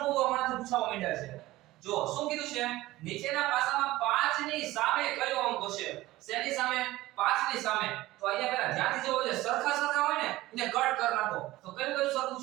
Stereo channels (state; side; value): quieter; left; 17.4 dB